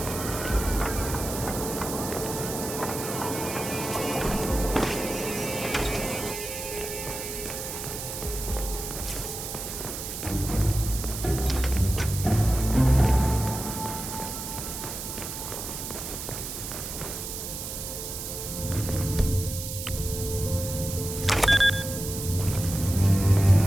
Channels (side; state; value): right; noise; hiss, 7 dB below the sound